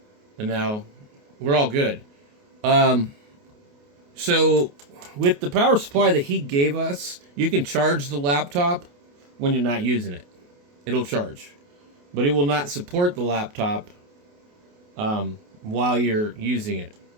And now we're all good. So with the power supply that he gave us, you can charge the laptop when you're not using it. It'll charge, but it will not support the laptop while you're using it.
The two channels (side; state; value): left; late; 28 ms